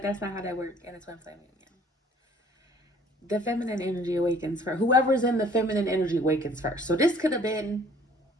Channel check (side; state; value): both; normal; correlation 0.56